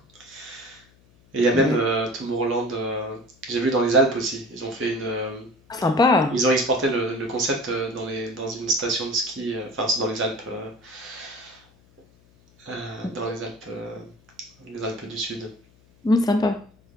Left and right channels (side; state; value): left; noise; hum, 30 dB below the sound